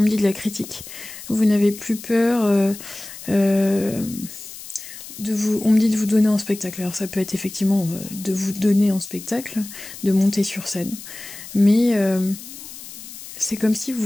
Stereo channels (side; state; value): left; noise; hiss, 14 dB below the sound